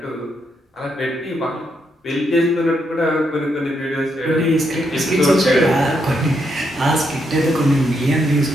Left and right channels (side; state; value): both; normal; correlation 0.79